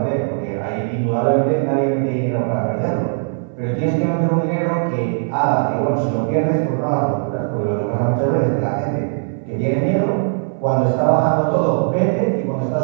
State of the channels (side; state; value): left; silent; 60 dB below the other